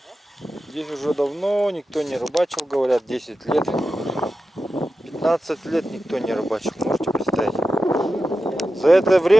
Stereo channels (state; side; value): normal; both; correlation 0.91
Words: Здесь уже давно никто не рыбачил, говорят, 10 лет. 15 лет никто не рыбачил, можете представить. За это